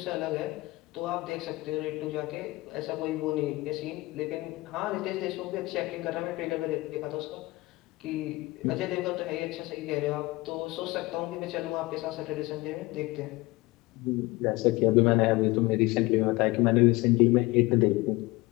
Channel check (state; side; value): quieter; right; 21.1 dB